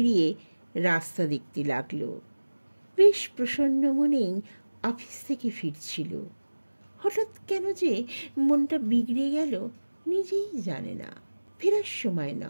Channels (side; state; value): both; inverted; correlation -1.00